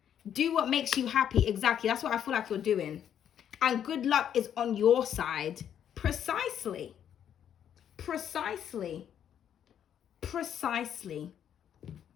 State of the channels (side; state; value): right; quieter; 9.4 dB